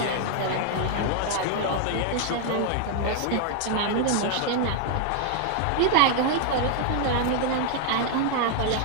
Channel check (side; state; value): both; different; correlation 0.00